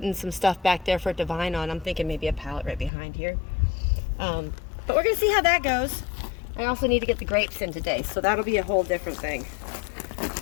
some stuff back there for it to vine on. I'm thinking maybe a pallet right behind here. But we're gonna see how that goes. I also need to get the grapes in today, so that'll be a whole different thing.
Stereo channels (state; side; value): drops out; right; at 2.9 s